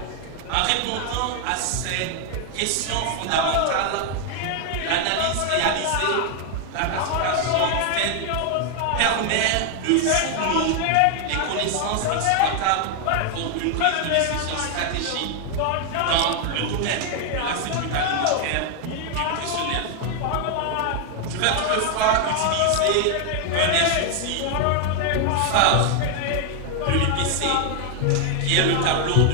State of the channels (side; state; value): both; different; correlation 0.00